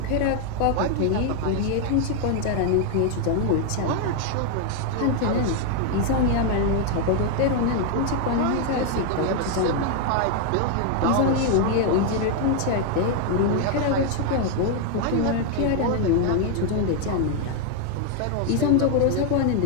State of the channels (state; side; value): different; both; correlation 0.01